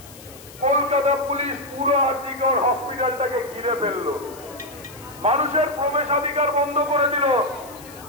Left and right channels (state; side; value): noise; left; hiss, 20 dB below the sound